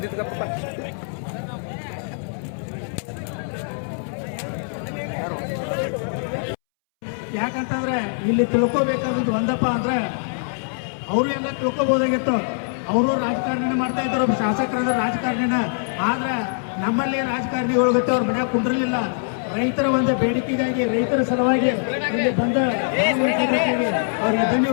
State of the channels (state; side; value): silent; right; 64 dB below the other